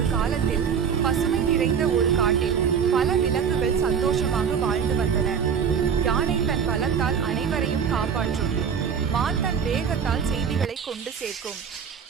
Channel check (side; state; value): left; quieter; 7.1 dB